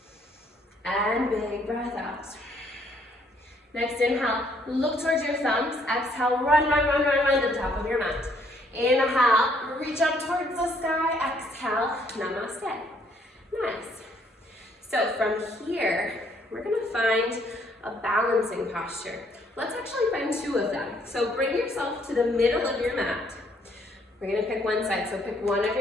And big breath out. Next inhale. Look towards your thumbs. Exhale. Run to the top of your mat. Inhale. Reach up towards the sky. Exhale. Namaste. Nice. So from here, we're going to find a balancing posture. Let's actually find two of them. So bring yourself to the middle of your mat. We're going to pick one side. So pick one of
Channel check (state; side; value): normal; both; correlation 0.67